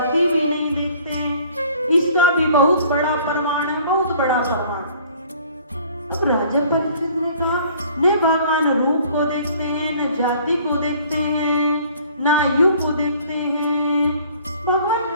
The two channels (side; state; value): both; inverted; correlation -0.54